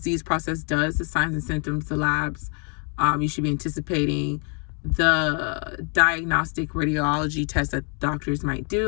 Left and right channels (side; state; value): right; quieter; 39.0 dB